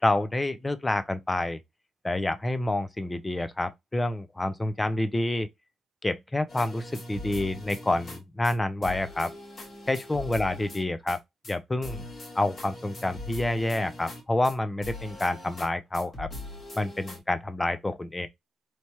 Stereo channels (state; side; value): normal; both; correlation 0.95